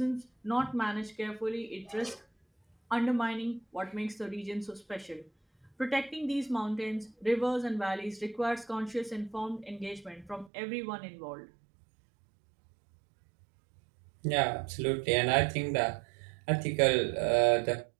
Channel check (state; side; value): drops out; left; at 10.5 s